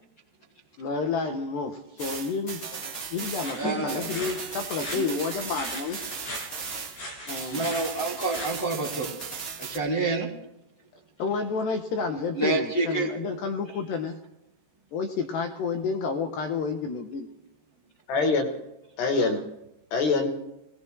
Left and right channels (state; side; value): late; right; 14 ms